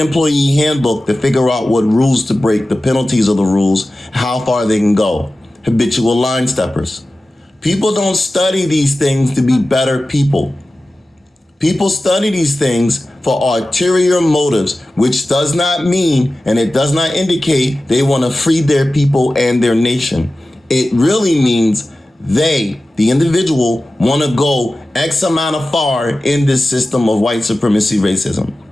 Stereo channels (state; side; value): normal; both; correlation 0.95